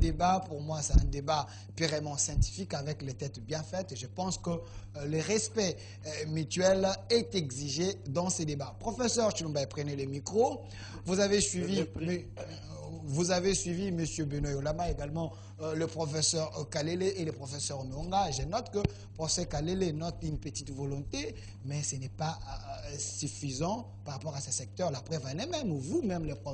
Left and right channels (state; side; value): identical; both; correlation 1.00